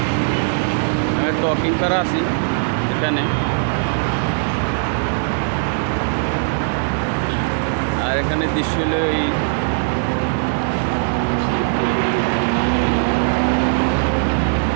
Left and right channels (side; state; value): left; silent; digital silence